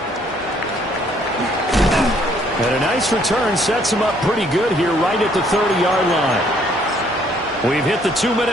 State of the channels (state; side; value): normal; both; correlation 0.65